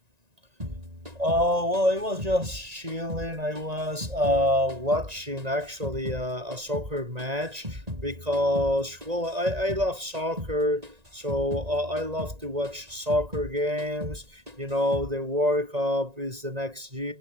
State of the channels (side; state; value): left; late; 1.9 ms